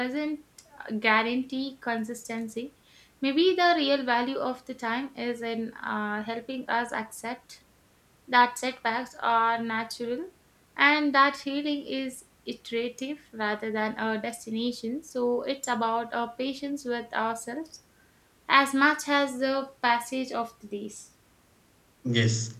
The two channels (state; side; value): identical; both; correlation 1.00